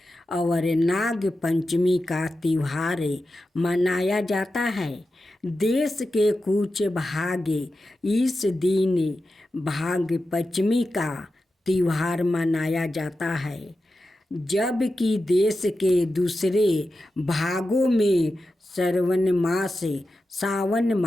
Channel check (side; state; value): both; normal; correlation 0.91